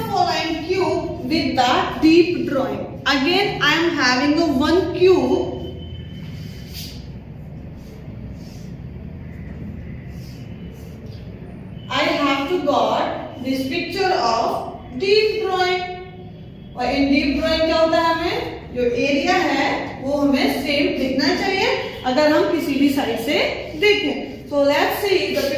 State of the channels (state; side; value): identical; both; correlation 1.00